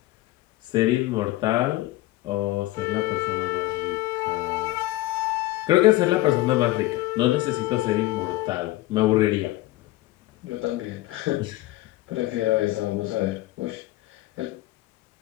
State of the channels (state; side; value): quieter; right; 17.7 dB